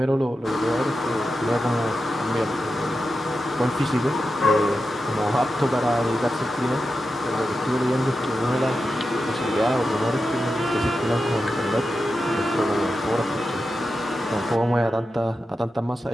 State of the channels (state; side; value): normal; both; correlation 0.90